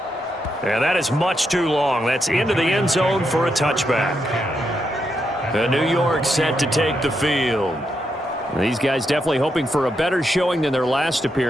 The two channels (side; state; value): both; normal; correlation 0.82